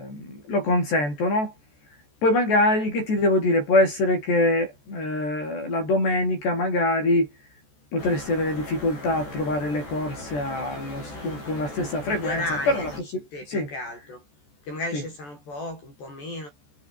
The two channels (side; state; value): right; late; 14 ms